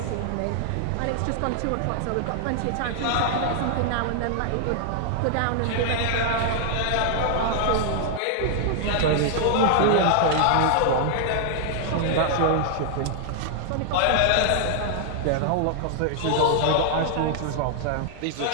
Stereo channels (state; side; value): different; both; correlation -0.01